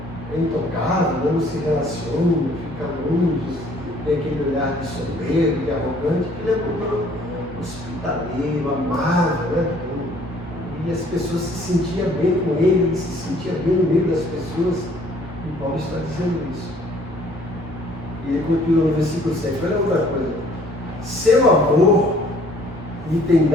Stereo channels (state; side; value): normal; both; correlation 0.59